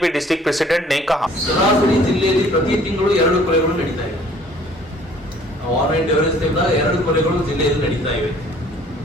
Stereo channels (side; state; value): both; normal; correlation 0.55